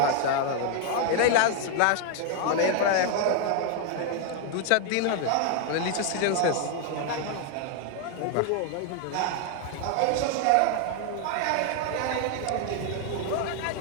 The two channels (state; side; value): different; both; correlation 0.00